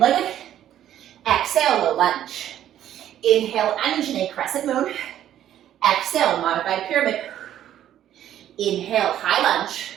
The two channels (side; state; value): left; quieter; 11.4 dB